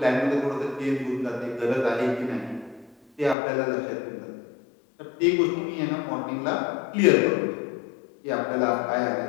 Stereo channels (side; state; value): right; drops out; at 3.4 s